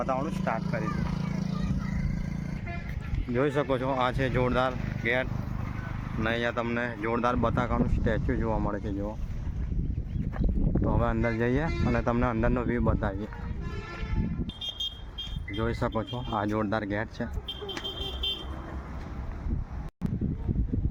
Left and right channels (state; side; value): identical; both; correlation 1.00